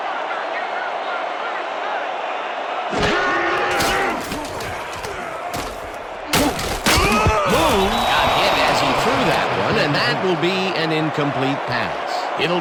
And that will be an incomplete pass.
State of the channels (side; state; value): both; identical; correlation 1.00